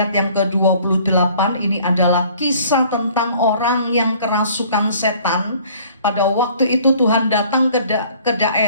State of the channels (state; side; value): inverted; both; correlation -0.54